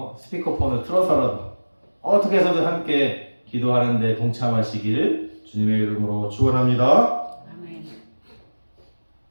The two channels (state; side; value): inverted; both; correlation -1.00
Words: 스피커폰을 틀어서라도 어떻게 해서든 함께 기도하는데 동참하시기를 주님의 이름으로 축원합니다. 아멘.